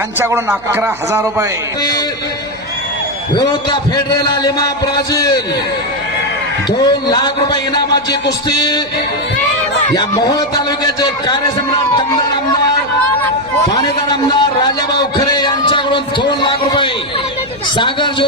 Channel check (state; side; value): noise; left; hum, 25 dB below the sound